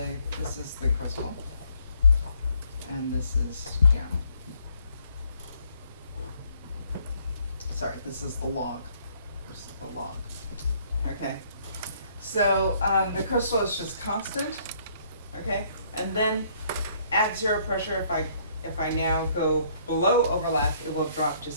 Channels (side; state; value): both; inverted; correlation -0.65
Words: crystal, and this is jamming. Sorry, this is the log. This is the log. Okay. So the crystal is just constant, okay? And then at 0 pressure, if I now go below overlap, it will drop